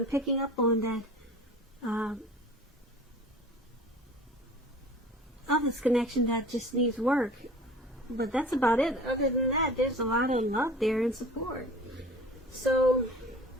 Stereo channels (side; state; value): both; normal; correlation 0.43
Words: picking up on, that of this connection that just needs work. But that's about it. Other than that, there's a lot of love there and support. So,